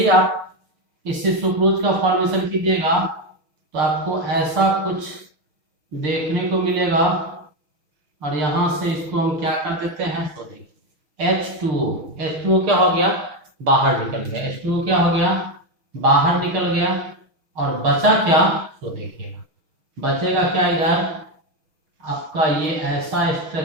आप इससे सुक्रोज का फॉर्मेशन कीजिएगा तो आपको ऐसा कुछ देखने को मिलेगा। और यहाँ से इसको हम क्या कर देते हैं, तो देखिए H2O क्या हो गया, बाहर निकल गया। H2O क्या हो गया, बाहर निकल गया। और बचा क्या, तो देखिएगा बचेगा क्या, इधर आपका ये ऐसा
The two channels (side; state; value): left; late; 6.6 ms